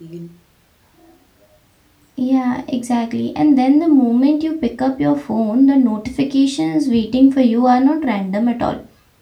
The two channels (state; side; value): identical; both; correlation 1.00